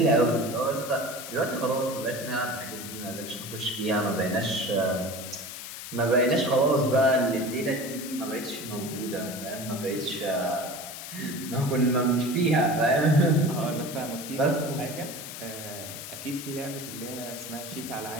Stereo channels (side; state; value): left; noise; hiss, 10 dB below the sound